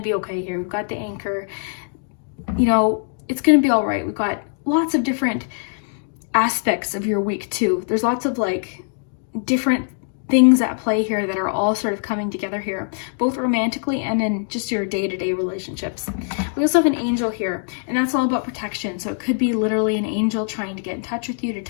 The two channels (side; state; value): right; silent; digital silence